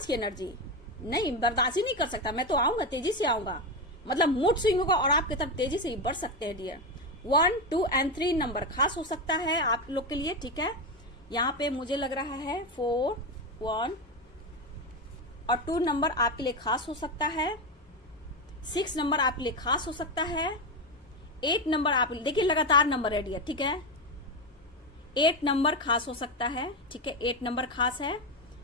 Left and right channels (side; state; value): both; normal; correlation 0.13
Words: की एनर्जी, नहीं बर्दाश्त ही नहीं कर सकता, मैं तो आऊंगा, तेजी से आऊंगा, मतलब मूड स्विंग होगा और आपकी तरफ तेजी से बढ़ सकते हैं डियर। 1, 2 और 3 नंबर खास हो सकता है आप लोग के लिए, ठीक है। यहाँ पे मुझे लग रहा है 4, 1 और 2 नंबर आपके लिए खास हो सकता है। 6 नंबर आपके लिए खास हो सकता है। 8 नंबर आप देखिए लगातार नंबर है डियर, ठीक है। 8 नंबर खास हो सकता है, ठीक है। 8 नंबर खास है।